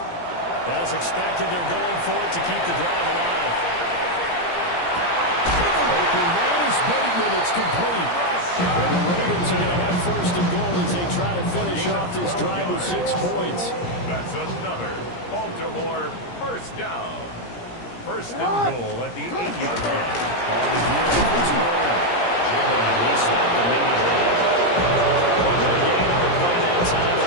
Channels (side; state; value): right; late; 17 ms